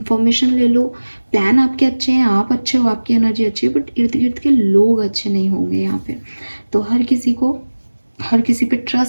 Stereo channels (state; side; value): inverted; both; correlation -1.00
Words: ले लो। प्लान आपके अच्छे हैं, आप अच्छे हो, आपकी एनर्जी अच्छी है, बट इर्द गिर्द के लोग अच्छे नहीं होंगे यहाँ पे। तो हर किसी पे